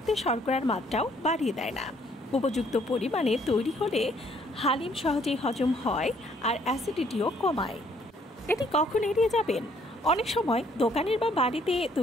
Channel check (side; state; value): both; normal; correlation 0.65